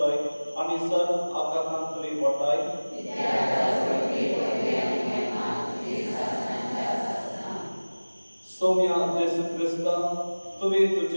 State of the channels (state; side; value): inverted; both; correlation -1.00